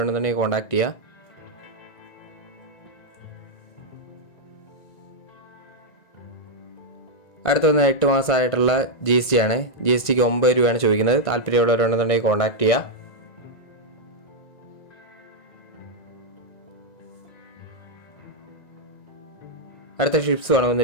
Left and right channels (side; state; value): right; late; 1.9 ms